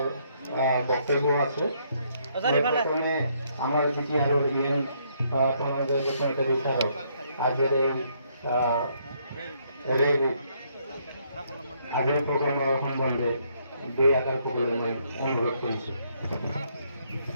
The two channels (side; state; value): both; inverted; correlation -0.71